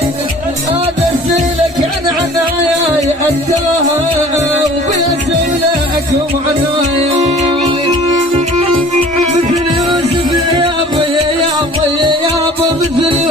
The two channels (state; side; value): normal; both; correlation 0.48